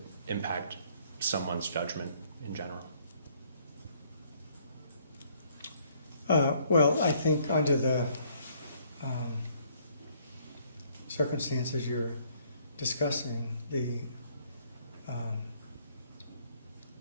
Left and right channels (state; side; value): inverted; both; correlation -0.64